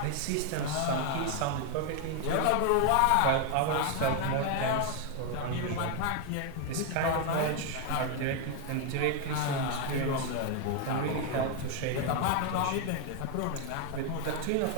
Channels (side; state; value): both; different; correlation 0.01